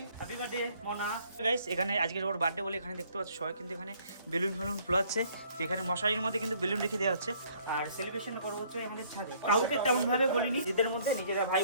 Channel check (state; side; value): inverted; both; correlation -0.61